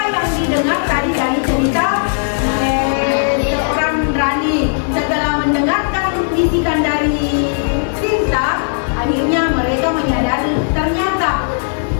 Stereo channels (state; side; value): silent; right; 60 dB below the other